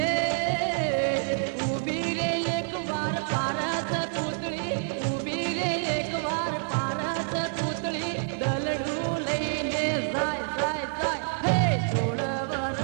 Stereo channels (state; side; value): silent; left; 60 dB below the other